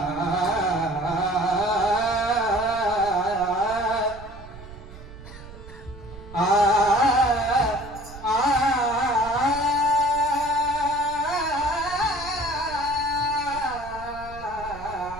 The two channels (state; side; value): noise; right; rumble, 16 dB below the sound